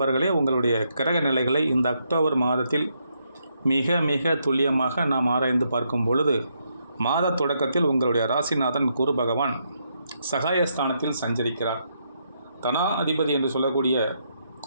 உங்களுடைய கிரக நிலைகளை இந்த அக்டோபர் மாதத்தில் மிக மிக துல்லியமாக நாம் ஆராய்ந்து பார்க்கும் பொழுது, மாத தொடக்கத்தில் உங்களுடைய ராசிநாதன் குரு பகவான் சகாயஸ்தானத்தில் சஞ்சரிக்கிறார். தனா அதிபதி என்று சொல்லக்கூடிய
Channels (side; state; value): both; inverted; correlation -0.78